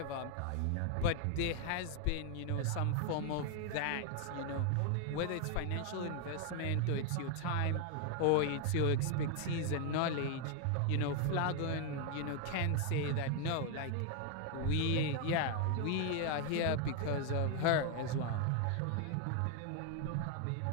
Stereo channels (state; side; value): different; both; correlation 0.01